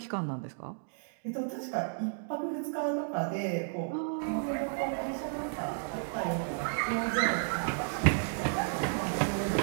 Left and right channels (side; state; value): left; silent; digital silence